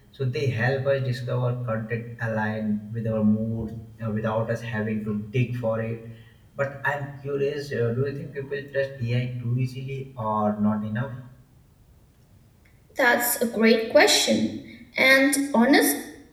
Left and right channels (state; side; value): identical; both; correlation 1.00